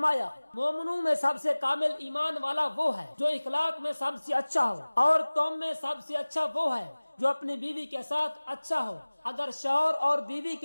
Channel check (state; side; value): inverted; both; correlation -1.00